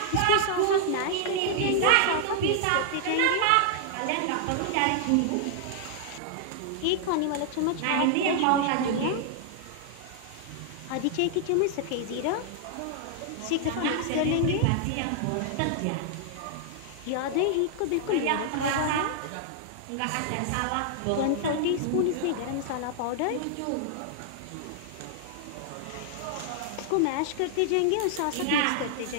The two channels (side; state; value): both; different; correlation -0.01